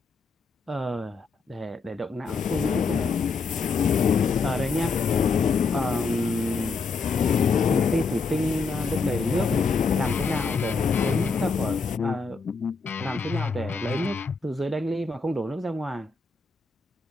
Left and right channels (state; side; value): quieter; right; 4.4 dB